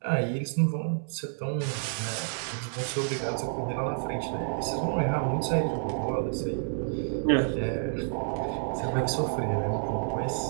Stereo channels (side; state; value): left; silent; digital silence